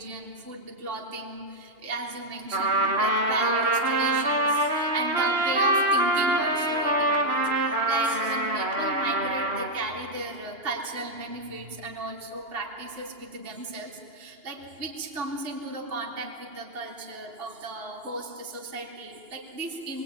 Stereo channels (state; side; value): late; left; 2.8 ms